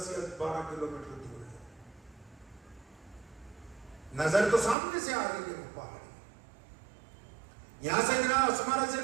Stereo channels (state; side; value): drops out; left; at 4.8 s